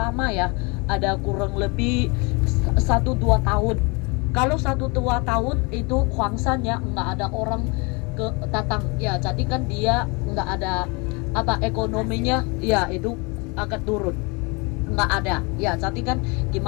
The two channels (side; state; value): right; quieter; 29.3 dB